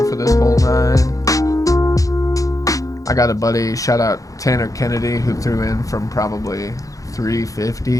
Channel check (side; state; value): right; late; 0.16 ms